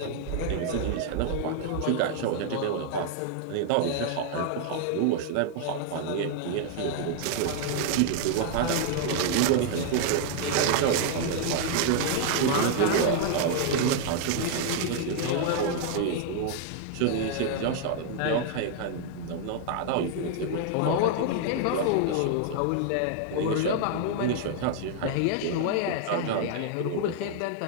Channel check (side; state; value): both; different; correlation 0.00